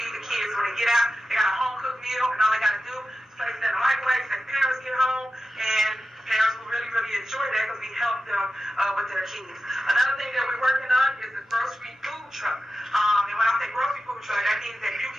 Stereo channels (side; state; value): both; normal; correlation 0.92